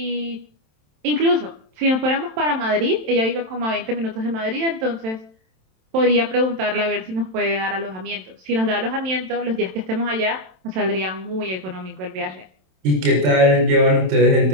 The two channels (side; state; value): left; late; 27 ms